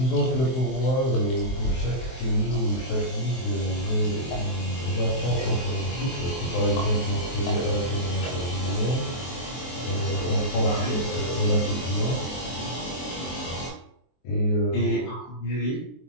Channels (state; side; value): late; right; 23 ms